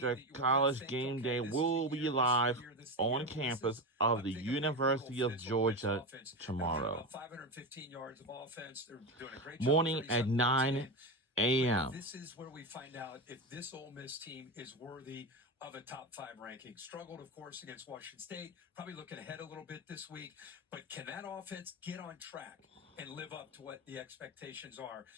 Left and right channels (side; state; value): both; normal; correlation 0.18